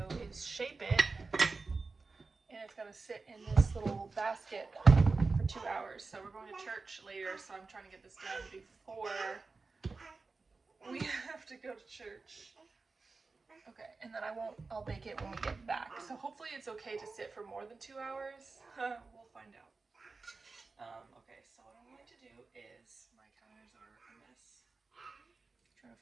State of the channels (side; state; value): left; quieter; 4.0 dB